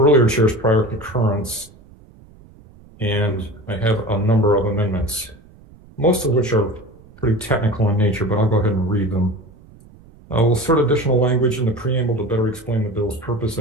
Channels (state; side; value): noise; right; rumble, 24 dB below the sound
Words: chair's prior concurrence, and I have a number of amendments, most of which are pretty technical in nature, but I'll go ahead and read them. We'll insert additional language in the preamble to better explain the bill's purpose